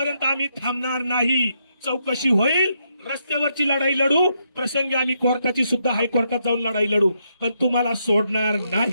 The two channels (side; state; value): both; inverted; correlation -0.78